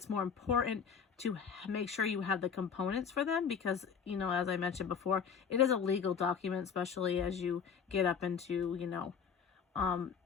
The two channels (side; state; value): right; quieter; 6.8 dB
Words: more important to make sure you have the components for them because, you know, as I mentioned before, it is a legal document, especially as you get up into, you know,